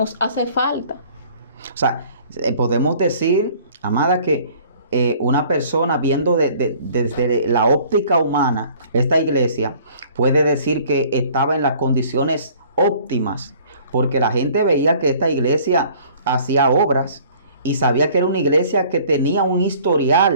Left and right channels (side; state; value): both; inverted; correlation -0.53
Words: hace falta. O sea, podemos decir, amada, que una persona viendo desde la óptica humana esta iglesia puede decir que estaba en las condiciones óptimas, porque la gente veía que esta iglesia hacía obras y sabía que era una iglesia que tenía un